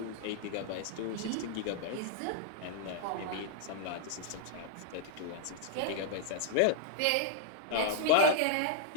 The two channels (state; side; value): different; both; correlation -0.02